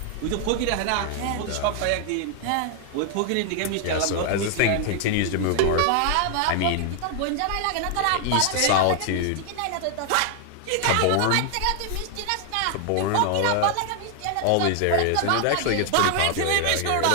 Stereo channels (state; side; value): different; both; correlation 0.00